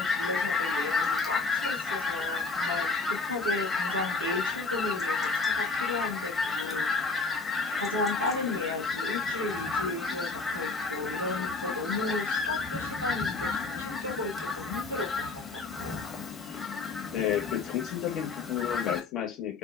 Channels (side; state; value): right; quieter; 3.9 dB